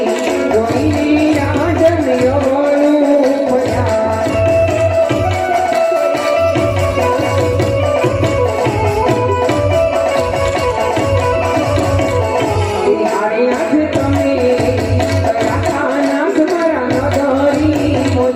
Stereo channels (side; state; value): both; identical; correlation 1.00